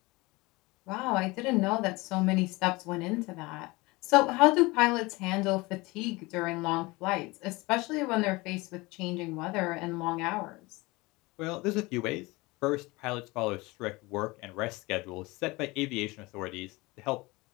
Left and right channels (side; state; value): right; quieter; 23.0 dB